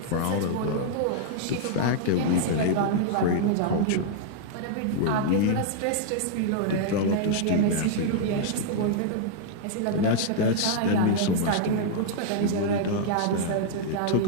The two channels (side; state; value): both; different; correlation -0.01